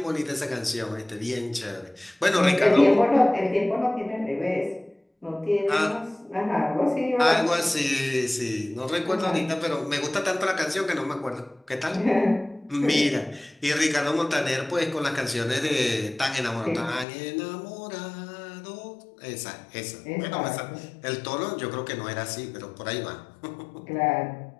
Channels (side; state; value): right; drops out; at 17.1 s